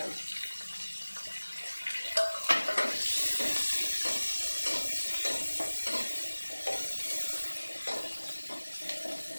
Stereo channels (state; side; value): inverted; both; correlation -1.00